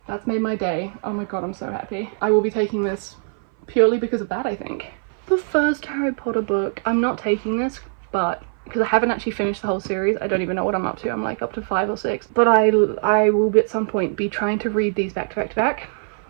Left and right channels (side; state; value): left; silent; 58 dB below the other